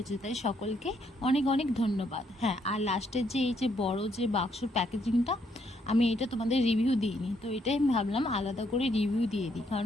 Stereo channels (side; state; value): both; normal; correlation 0.72